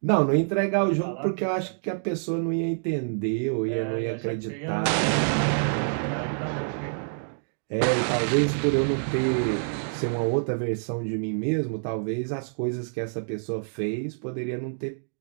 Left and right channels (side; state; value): left; silent; digital silence